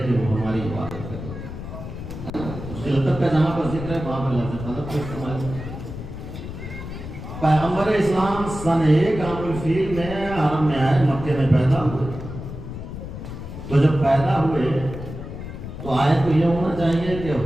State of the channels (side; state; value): left; noise; rumble, 9 dB below the sound